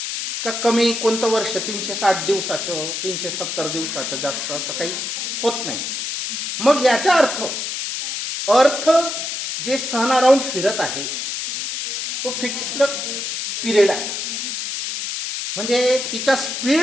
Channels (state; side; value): noise; left; hiss, 4 dB below the sound